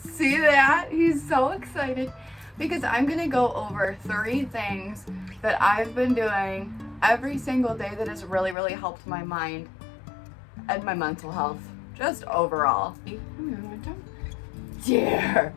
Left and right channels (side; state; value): right; drops out; at 8.6 s